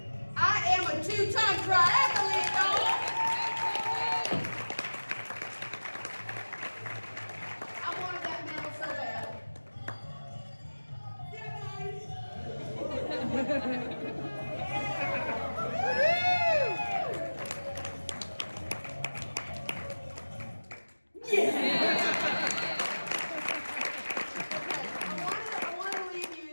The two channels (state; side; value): inverted; both; correlation -1.00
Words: I am a 2-time triathlete, y'all. I wanted that medal so bad.